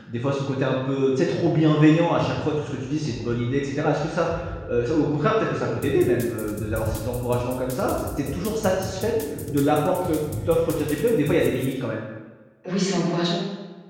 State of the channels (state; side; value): identical; both; correlation 1.00